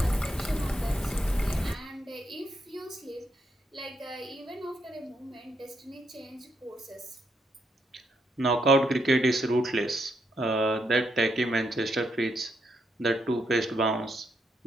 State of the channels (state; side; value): normal; both; correlation 0.78